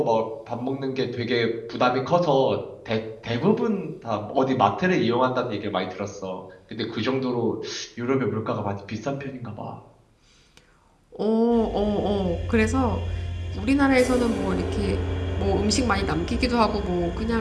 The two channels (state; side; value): identical; both; correlation 1.00